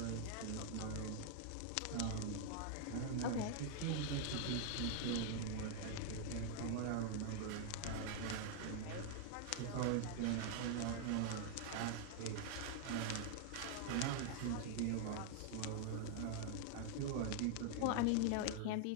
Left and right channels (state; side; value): different; both; correlation 0.00